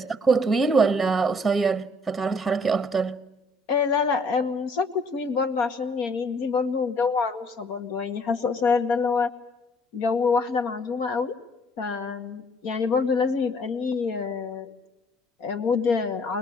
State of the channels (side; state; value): both; normal; correlation 0.61